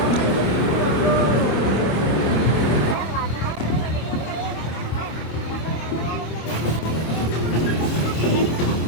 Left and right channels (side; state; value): right; late; 26 ms